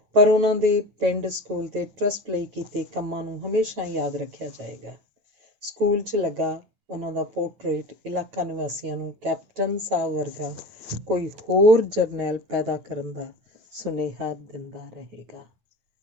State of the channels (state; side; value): late; left; 9.5 ms